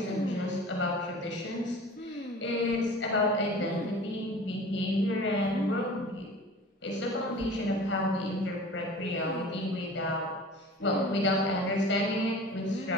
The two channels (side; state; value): both; normal; correlation 0.41